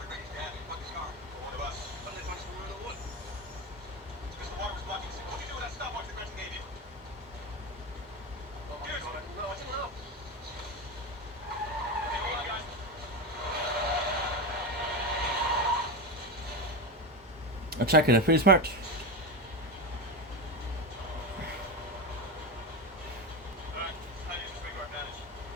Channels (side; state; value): both; normal; correlation 0.17